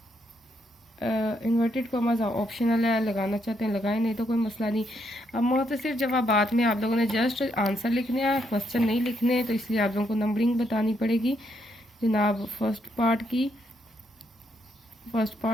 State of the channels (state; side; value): normal; both; correlation 0.76